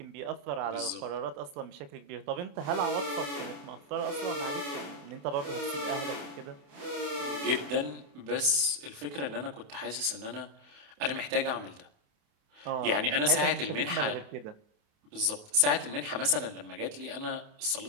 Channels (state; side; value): late; left; 28 ms